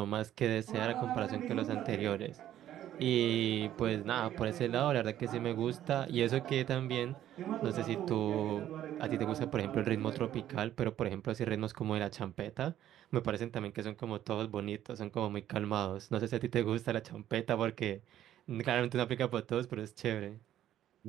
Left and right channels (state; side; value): quieter; left; 11.9 dB